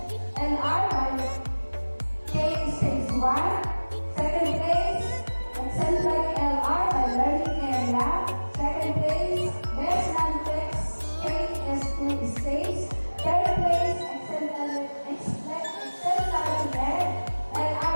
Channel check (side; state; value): both; inverted; correlation -1.00